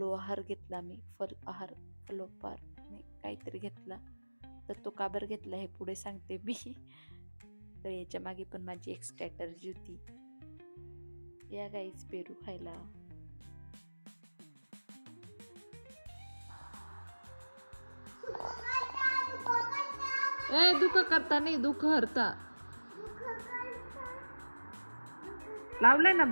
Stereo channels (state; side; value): inverted; both; correlation -1.00